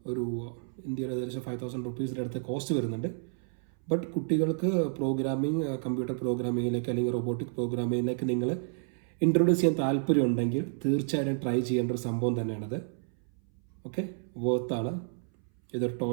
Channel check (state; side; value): silent; left; 58 dB below the other